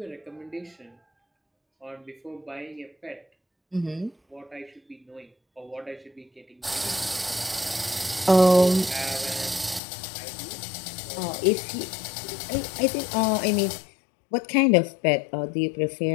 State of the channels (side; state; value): right; drops out; at 9.8 s